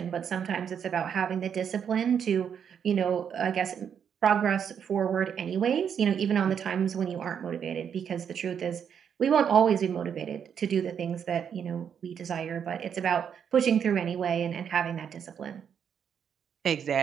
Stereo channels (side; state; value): left; quieter; 7.9 dB